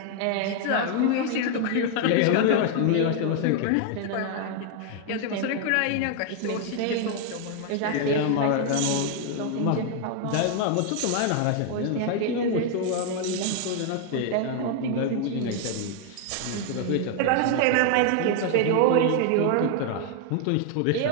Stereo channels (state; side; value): different; both; correlation 0.00